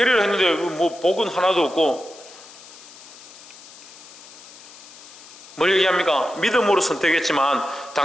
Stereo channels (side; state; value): left; noise; hiss, 19 dB below the sound